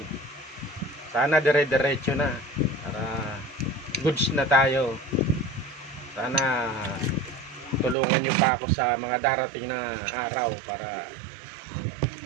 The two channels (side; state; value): left; drops out; at 8.0 s